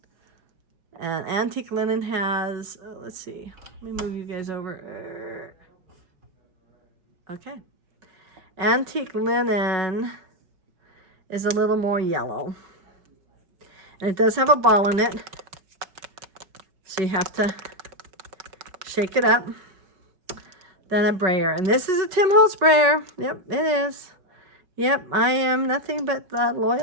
And Antique Linen has, let's see, let me move you guys over. Okay. Antique Linen is a little more yellow. And it does have a ball in it, so you have to shake it up. Then a brayer. And this is a Tim Holtz brayer. Yep, it is. Yep, I am nothing but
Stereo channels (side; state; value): left; late; 5.3 ms